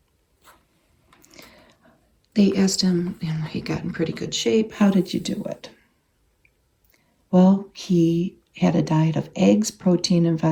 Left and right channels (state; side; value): identical; both; correlation 1.00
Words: They asked him, and he got in pretty good shape, how did you do it? Well, he had a diet of eggs, protein, and